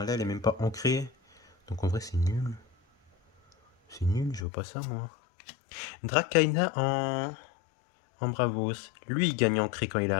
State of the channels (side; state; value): right; drops out; at 4.5 s